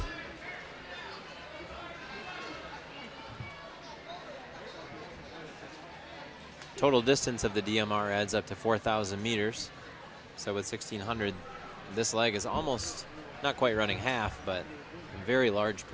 Total distance of the DMR adds up to 4,000 meters. So with 1,600, this leg is almost, not quite running half, but a very large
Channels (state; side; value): identical; both; correlation 1.00